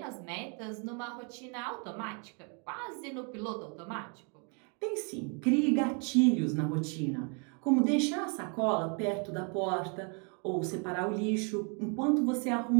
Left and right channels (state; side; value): quieter; left; 37.1 dB